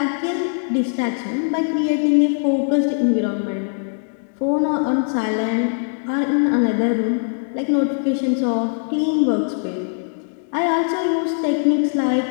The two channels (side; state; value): right; silent; digital silence